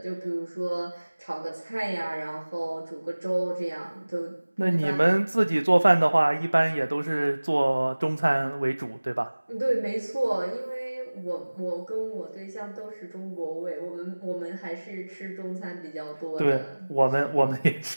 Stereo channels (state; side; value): inverted; both; correlation -1.00